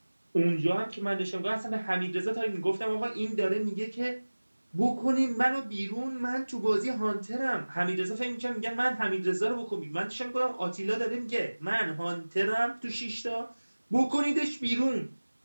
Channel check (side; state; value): both; inverted; correlation -1.00